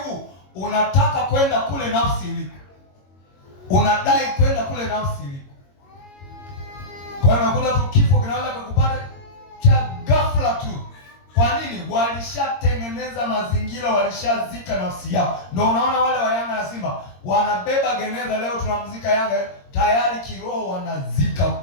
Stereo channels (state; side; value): late; right; 22 ms